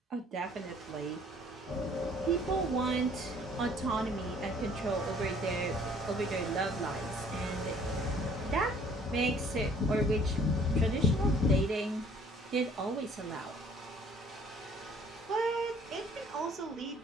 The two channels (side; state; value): both; normal; correlation 0.57